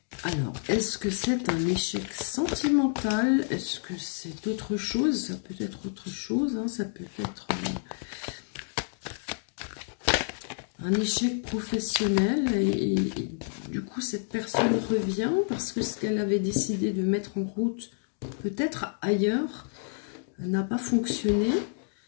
Alors, est-ce que c'est un échec sentimental? Est-ce que c'est autre chose? Ça peut être autre chose. Hein. Ça peut être un échec professionnel. Et du coup, cette personne revient parce que ce qu'elle avait décidé de mettre en route, peut-être ailleurs, n'a pas fonctionné.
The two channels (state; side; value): silent; right; digital silence